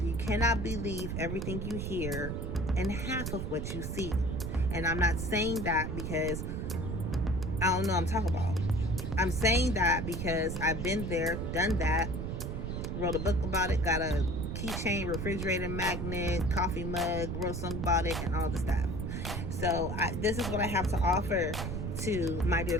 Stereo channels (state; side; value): noise; right; rumble, 3 dB below the sound